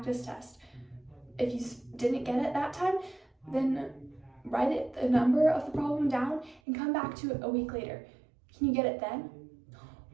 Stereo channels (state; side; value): drops out; left; at 6.6 s